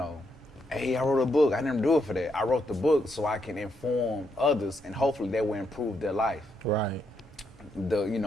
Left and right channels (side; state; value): both; normal; correlation 0.78